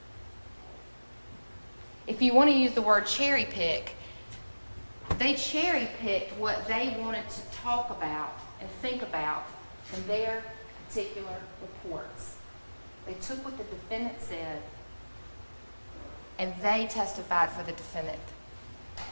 If you want to use the word cherry pick, they cherry picked what they wanted to talk about and think about in their particular reports. They took what the defendant said and they testified for the defendant.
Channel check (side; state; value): both; inverted; correlation -1.00